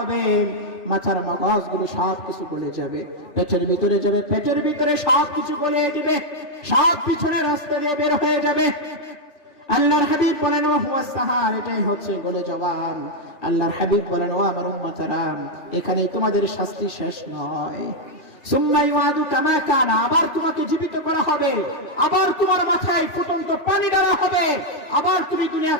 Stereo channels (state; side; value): late; right; 3.3 ms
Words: মাথার মগজগুলো সব কিছু গলে যাবে, পেটের ভিতরে যাবে, পেটের ভিতরে সব কিছু গলিয়ে দিবে, সব পিছনের রাস্তা দিয়ে বের হয়ে যাবে। আল্লাহর হাবিব বলেন, ওয়া হুয়া সাহার, এটাই হচ্ছে গলে যাওয়া। আল্লাহর হাবিব বলেন, ও আমার উম্মতরা, এখানে তোমাদের শাস্তি শেষ নয়। সুম্মা ইউআদু কামা কানা, আবার তোমাকে জীবিত করা হবে, আবার তোমার মাথায় ফুটন্ত পানি ঢালা হবে, আবার তুমি দুনিয়া